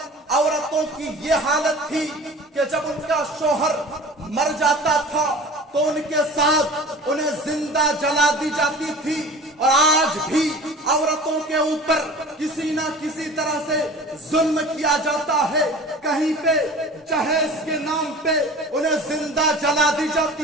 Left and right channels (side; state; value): both; normal; correlation 0.40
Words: عورتوں کی یہ حالت تھی کہ جب ان کا شوہر مر جاتا تھا تو ان کے ساتھ انہیں زندہ جلا دی جاتی تھی. اور آج بھی عورتوں کے اوپر کسی نہ کسی طرح سے ظلم کیا جاتا ہے. کہیں پہ جہیز کے نام پہ انہیں زندہ جلا دی